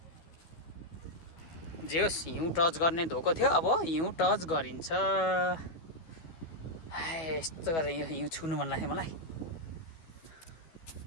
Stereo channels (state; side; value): late; right; 12 ms